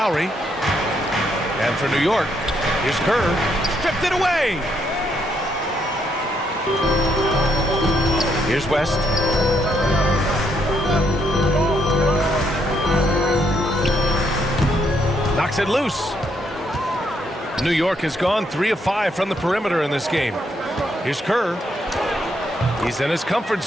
And for New York, here's Kerr. Stripped it away. Here's West. Knocks it loose. New York has gone 3 of 5 from the perimeter in this game. Here's Kerr. He's in his comfort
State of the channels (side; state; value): both; normal; correlation 0.74